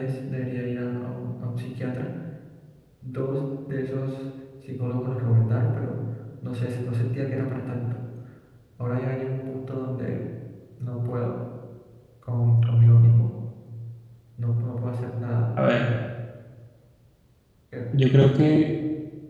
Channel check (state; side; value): identical; both; correlation 1.00